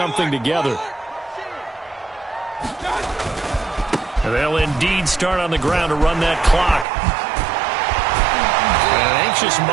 together. They'll indeed start on the ground to run that clock. An anxious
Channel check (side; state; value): left; drops out; at 6.9 s